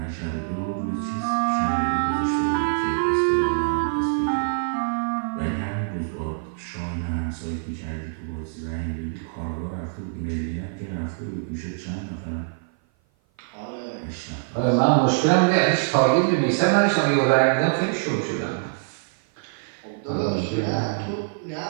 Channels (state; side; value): silent; left; 56 dB below the other